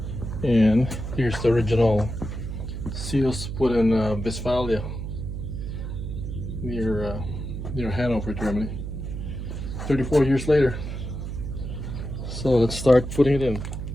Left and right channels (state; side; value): noise; right; hum, 6 dB below the sound